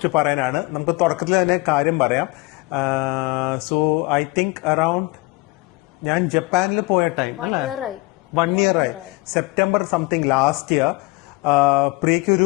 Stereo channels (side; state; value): right; quieter; 23.7 dB